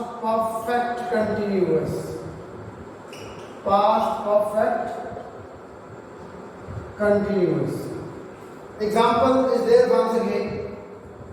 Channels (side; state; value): both; identical; correlation 1.00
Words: perfect continuous. Past perfect continuous. Example is there once again.